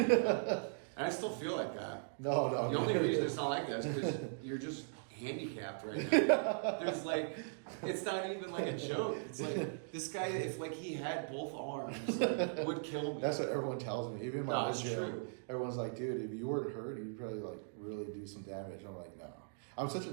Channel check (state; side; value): silent; left; digital silence